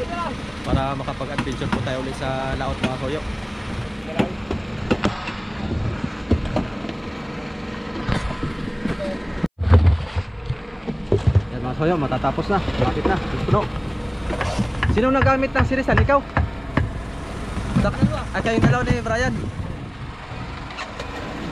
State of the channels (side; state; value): both; identical; correlation 1.00